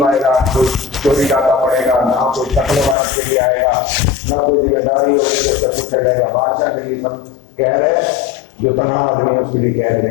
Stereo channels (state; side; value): drops out; right; at 3.0 s